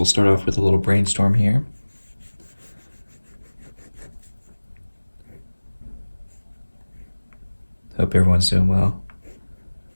start off with a little brainstorm here. Hope everyone's doing well.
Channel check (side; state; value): both; inverted; correlation -1.00